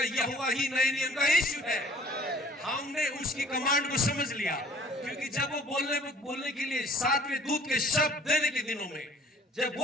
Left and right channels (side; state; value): both; normal; correlation 0.53